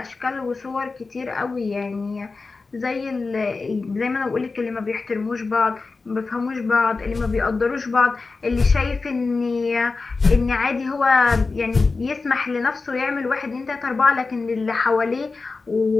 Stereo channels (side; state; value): right; quieter; 4.0 dB